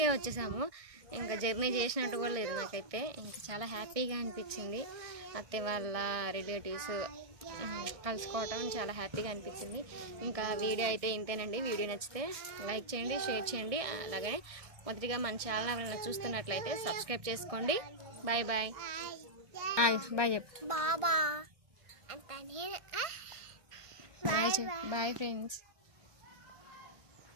వచ్చేసాము. ఇంకా జర్నీ చేసినట్టు కూడా లేదు నాకైతే. ఇంకా చాలా హ్యాపీగా అనిపించింది. అత్తయ్య వాళ్ళ రిలేటివ్స్ కలుసుకోవటం చాలా హ్యాపీగా అనిపించింది. ఇంకా వీడియో అయితే ఇంతేనండి. వీడియో నచ్చితే లైక్ చేయండి, షేర్ చేయండి. అలాగే మొదటిగా మన ఛానల్ ఎవరైనా చూస్తున్నట్లయితే సబ్స్క్రైబ్ చేసుకోండి. బాయ్ బాయ్ బాయ్ చెప్పు. Bye friends.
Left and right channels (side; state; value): left; late; 1.6 ms